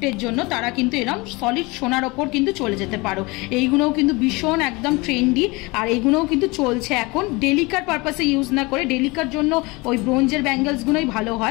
জন্য, তারা কিন্তু এরকম সলিড সোনার ওপর কিন্তু চলে যেতে পারো। এইগুলোও কিন্তু ভীষণ একদম ট্রেন্ডি, আর এইগুলোও কিন্তু চলছে এখন। ডেলিকার পারপাসে ইউজ না করে, ডেলিকার জন্য ওই ব্রোঞ্জের ব্যাঙ্গলসগুলোই ভালো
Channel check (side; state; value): right; quieter; 24.8 dB